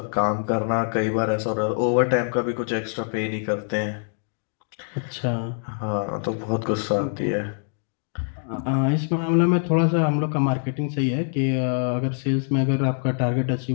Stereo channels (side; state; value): right; silent; digital silence